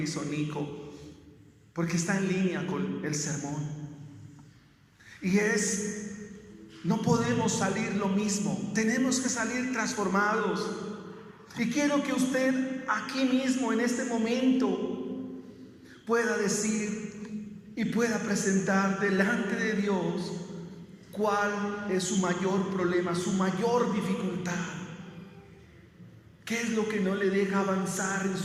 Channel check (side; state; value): both; identical; correlation 1.00